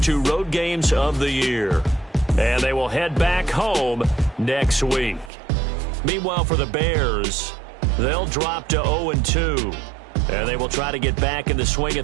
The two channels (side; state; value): left; drops out; at 5.3 s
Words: 2 road games of the year. And they will head back home next week. Meanwhile, for the Bears, they'll drop to 0-2. And they will try to get back in the swing